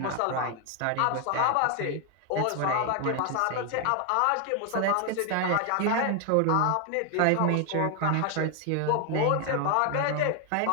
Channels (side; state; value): both; different; correlation 0.00